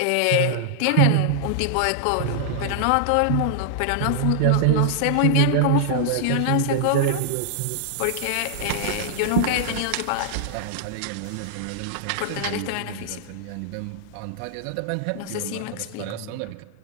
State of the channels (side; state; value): both; different; correlation -0.01